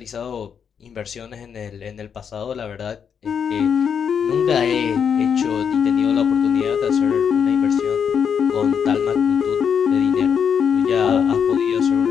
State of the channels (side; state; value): right; quieter; 7.3 dB